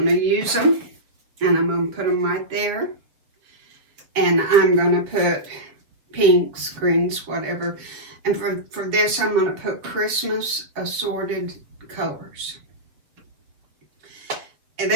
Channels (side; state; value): left; late; 7.4 ms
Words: going to use them, and I'm going to put them right there. And I'm going to put pinks, greens, whatever. And for this, I'm going to put Christmas assorted colors. And